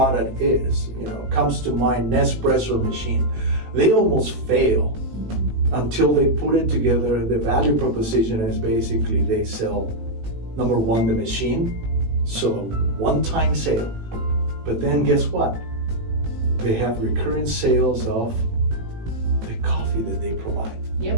is. Comes to mind Nespresso machine. They almost fail until they put it together. The value proposition is basically they sell, number one, the machine, so one-time sale. But then guess what? They have recurring sales of the coffee that they provide.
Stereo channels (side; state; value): left; late; 18 ms